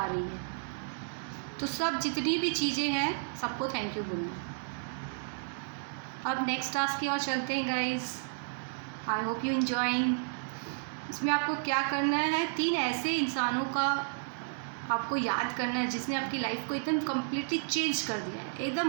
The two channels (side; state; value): left; silent; digital silence